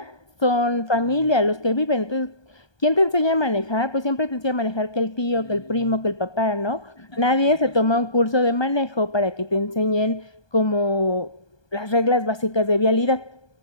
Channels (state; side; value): late; right; 1.2 ms